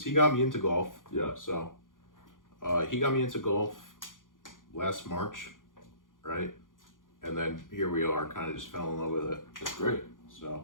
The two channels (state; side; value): late; right; 0.89 ms